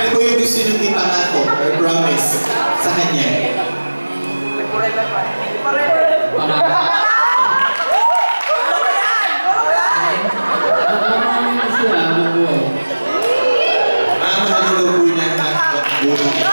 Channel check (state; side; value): inverted; both; correlation -1.00